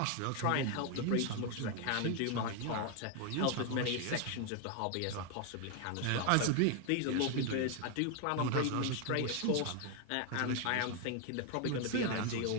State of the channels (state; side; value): different; both; correlation 0.01